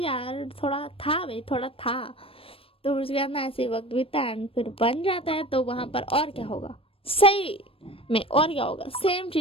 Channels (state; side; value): late; right; 0.27 ms